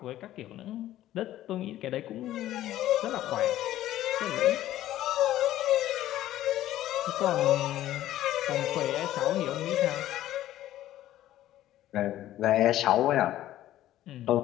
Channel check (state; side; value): quieter; right; 13.7 dB